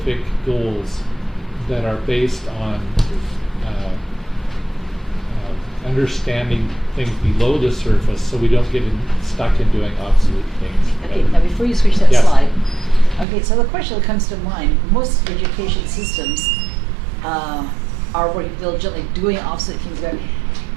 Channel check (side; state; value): left; drops out; at 13.2 s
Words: goals that are based on understanding things below the surface, so we don't get stuck in doing obsolete things. Okay, now before you switch that Yes. slide, okay, so the question that comes to mind, most education systems are working diligently, doing obsolete things better.